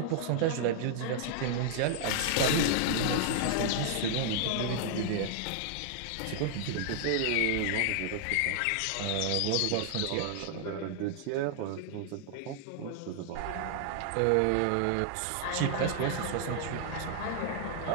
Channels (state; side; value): different; both; correlation -0.01